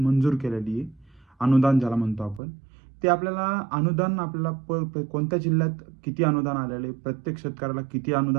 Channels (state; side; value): drops out; left; at 2.4 s